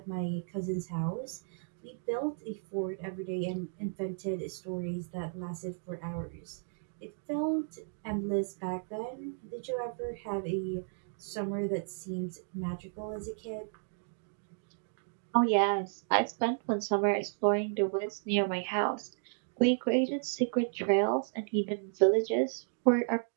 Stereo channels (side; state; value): left; silent; digital silence